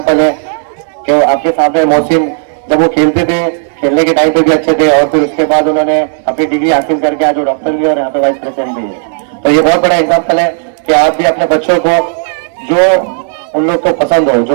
है कि आपके सामने मोहसिन जब वो खेलते थे, खेलने के टाइम पे भी अच्छे थे और फिर उसके बाद उन्होंने अपनी डिग्री हासिल करके आज वो डॉक्टर भी और यहाँ पे वाइस प्रेसिडेंट भी है। तो ये बहुत बड़ा एग्जांपल है कि आप भी अपने बच्चों को जो उन लोग को पसंद हो,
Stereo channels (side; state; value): left; silent; digital silence